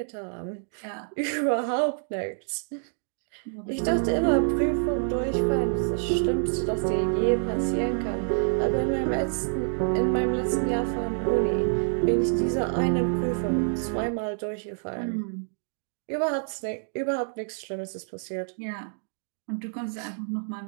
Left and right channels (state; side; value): silent; left; digital silence